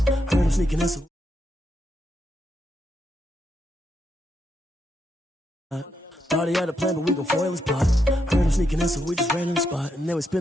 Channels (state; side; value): normal; both; correlation 0.81